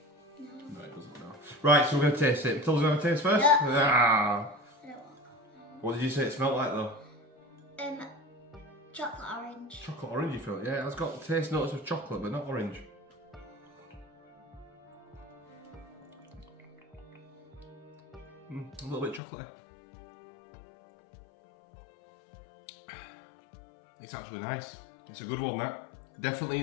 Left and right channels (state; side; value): drops out; right; at 19.2 s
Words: No, it doesn't, no. Right, so we're going to taste it. Matilda's going to taste first? Yeah. Ah. I don't want What did you say it smelled like though? chocolate orange. Chocolate orange, you feel? Yeah, it's got taste notes of chocolate, but not orange. A little bit chocolatey. It's actually nice. It's a good one, that. Definitely